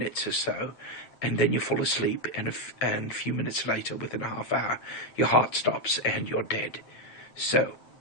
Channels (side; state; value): right; late; 9.1 ms